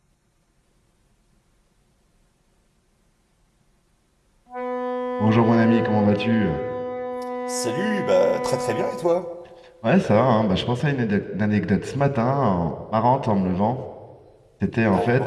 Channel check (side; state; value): both; identical; correlation 1.00